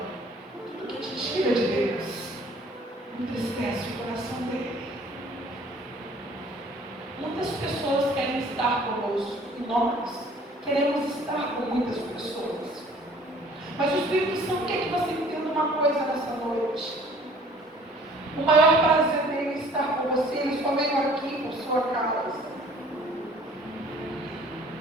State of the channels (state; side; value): normal; both; correlation 0.54